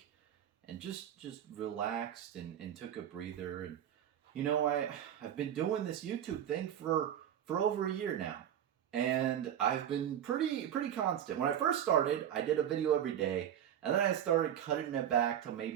and just relaxed and took a breather. And I've been doing this YouTube thing for over a year now, and I've been pretty constant. When I first started, I did a video every day, and then I started cutting it back to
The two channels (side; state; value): left; quieter; 10.2 dB